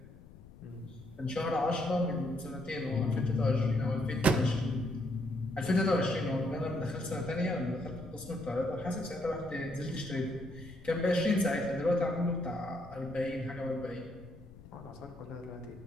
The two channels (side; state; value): left; noise; rumble, 19 dB below the sound